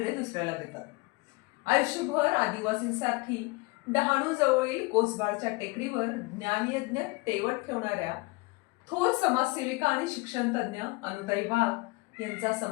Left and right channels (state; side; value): quieter; right; 25.3 dB